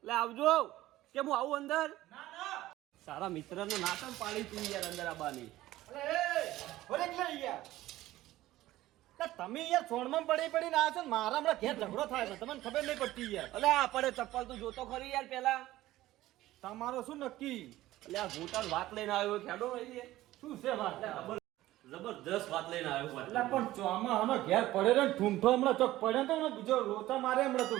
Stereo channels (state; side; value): quieter; left; 15.8 dB